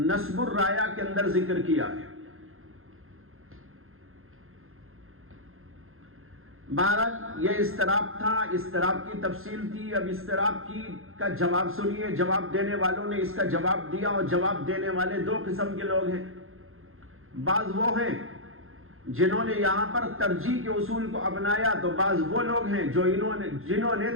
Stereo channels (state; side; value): late; left; 0.61 ms